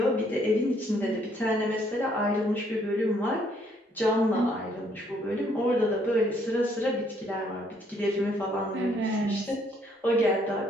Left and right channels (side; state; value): both; normal; correlation 0.67